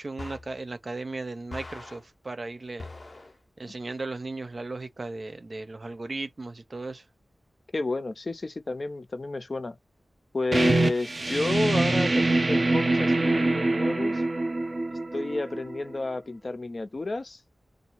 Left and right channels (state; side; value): normal; both; correlation 0.96